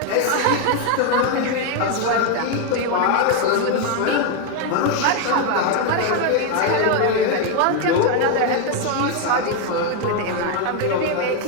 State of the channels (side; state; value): both; different; correlation 0.01